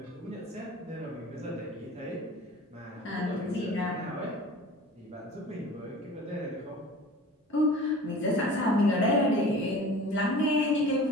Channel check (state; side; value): normal; both; correlation 0.41